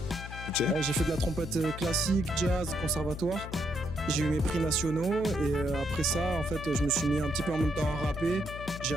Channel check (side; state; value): left; noise; hum, 10 dB below the sound